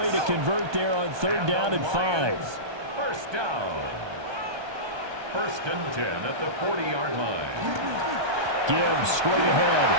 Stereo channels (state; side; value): late; left; 1.2 ms